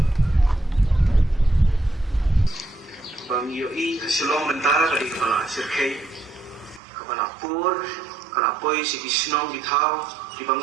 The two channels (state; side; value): drops out; left; at 6.8 s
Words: bang yoi Shillong mentara dari kepala sirkai kepala pur kalau poi si kisnong ditau